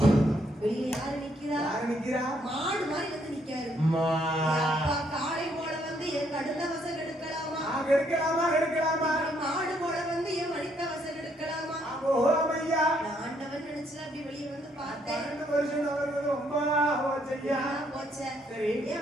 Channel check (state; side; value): normal; both; correlation 0.71